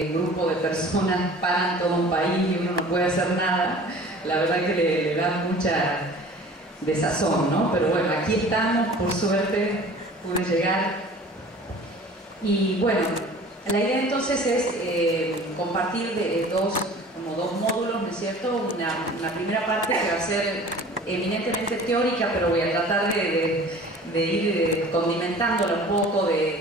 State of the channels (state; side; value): normal; both; correlation 0.45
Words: un grupo de personas paran todo un país y uno no puede hacer nada, la verdad que le da mucha desazón, ¿no? Pero bueno, aquí estamos, por suerte pude llegar. Y bueno, la idea entonces es compartir dos módulos, ¿no es cierto? Una primera parte que va a ser eminentemente teórica, pero voy a tratar de ir condimentándola un poco,